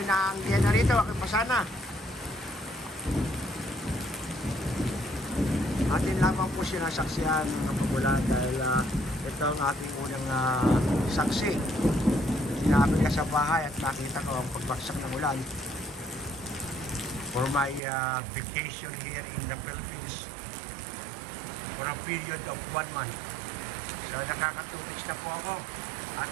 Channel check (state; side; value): drops out; left; at 17.8 s